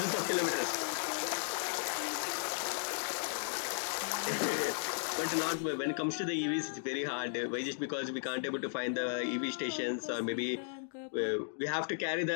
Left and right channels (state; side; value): silent; right; digital silence